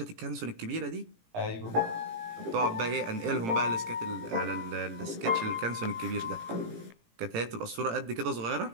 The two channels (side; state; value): left; late; 18 ms